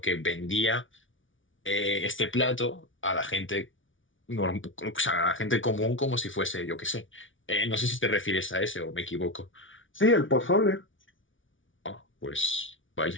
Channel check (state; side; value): late; right; 0.56 ms